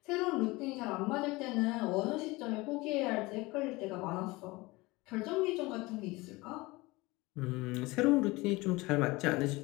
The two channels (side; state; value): right; quieter; 22.2 dB